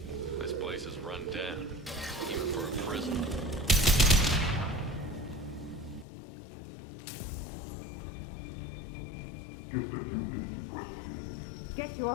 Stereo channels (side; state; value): right; drops out; at 6.1 s